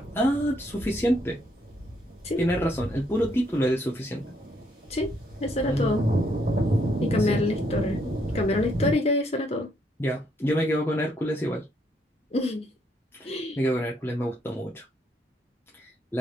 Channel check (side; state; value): both; normal; correlation 0.72